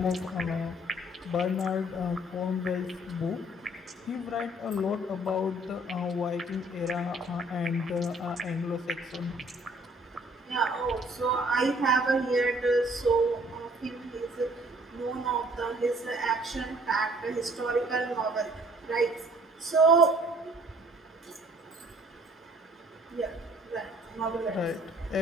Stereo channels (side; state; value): both; normal; correlation 0.58